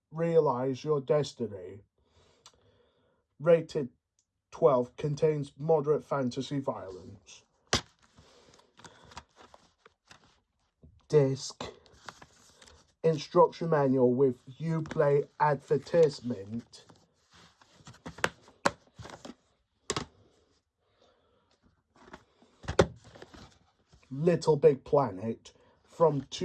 realize your destiny. Rated 12, contains moderate fantasy violence. Disc, instruction manual with Uplay advertisement. Little Big Planet from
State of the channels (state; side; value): identical; both; correlation 1.00